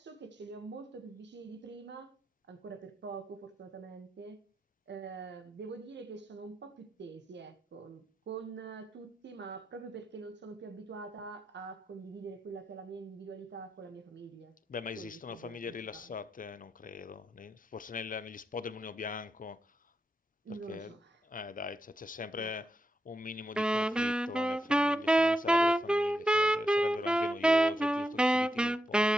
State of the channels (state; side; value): normal; both; correlation 0.86